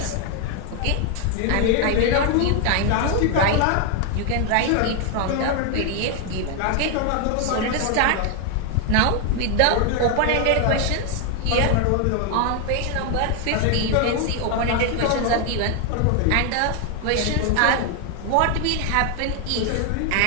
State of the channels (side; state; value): both; different; correlation 0.01